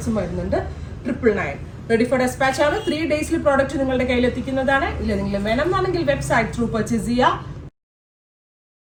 വരുന്നുണ്ട്. 999. റെഡി ഫോർ ഡെസ്പാച്ച് ആണ്. 3 ഡേയ്സിൽ പ്രോഡക്റ്റ് നിങ്ങളുടെ കയ്യിൽ എത്തിക്കുന്നതാണ്. ഇല്ല നിങ്ങൾ വേണം എന്നാണെങ്കിൽ വെബ്സൈറ്റ് ത്രൂ പർച്ചേസ് ചെയ്യുക.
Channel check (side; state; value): both; identical; correlation 1.00